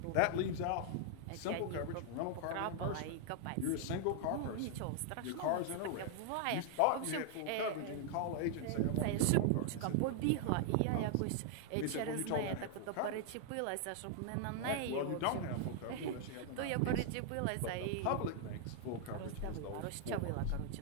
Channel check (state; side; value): different; both; correlation 0.00